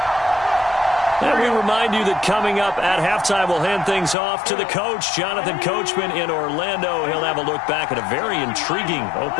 And we remind you that coming up at halftime, we'll hand things off to the coach, Jonathan Coachman in Orlando. He'll have a look back at a very intriguing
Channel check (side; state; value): right; drops out; at 4.2 s